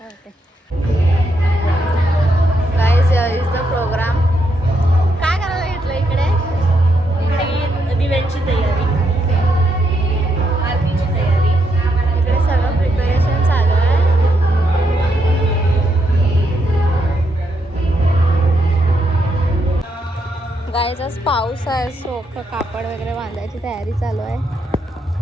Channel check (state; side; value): normal; both; correlation 0.79